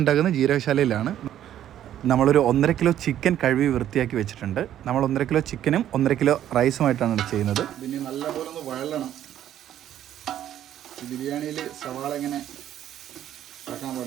ഉണ്ടാക്കുന്നത് ജീരകശാലയിലാണ്. നമ്മളൊരു 1.5 കിലോ ചിക്കൻ കഴുകി വൃത്തിയാക്കി വെച്ചിട്ടുണ്ട്. നമ്മൾ 1.5 കിലോ ചിക്കനും 1.5 കിലോ റൈസുമായിട്ടാണ് ചെയ്യുന്നത്. പിന്നെ നല്ലപോലെ ഒന്ന് വഴലണം. ബിരിയാണിയിൽ സവാള ഇങ്ങനെ ഇറക്കാൻ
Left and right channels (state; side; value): quieter; left; 11.3 dB